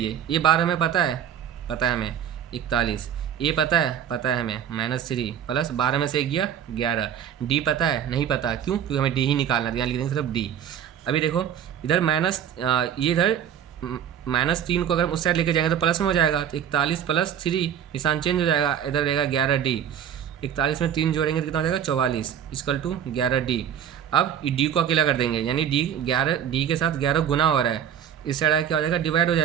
ये 12 हमें पता है हमें 41, ए पता है हमें -3 प्लस 12 में से गया 11, डी पता है नहीं पता, क्यों, क्योंकि हमें डी ही निकालना है, यहाँ लिख देंगे सिर्फ डी। अभी देखो इधर ये इधर -3 को अगर उस साइड लेके जाएंगे तो प्लस में हो जाएगा, तो 41 प्लस 3 निशान चेंज हो जाएगा, इधर रहेगा 11 डी। 41 में 3 जोड़ेंगे तो कितना हो जाएगा 44 इक्वल टू 11 डी। अब डी को अकेला कर देंगे, यानी डी के साथ 11 गुना हो रहा है, इस साइड क्या हो जाएगा, डिवाइड हो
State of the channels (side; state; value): left; quieter; 9.2 dB